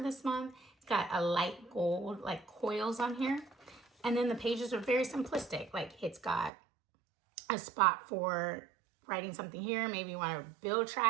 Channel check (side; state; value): left; drops out; at 6.5 s